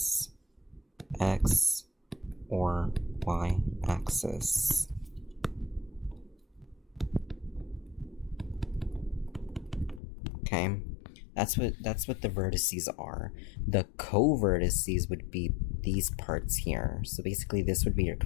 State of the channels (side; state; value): right; drops out; at 10.0 s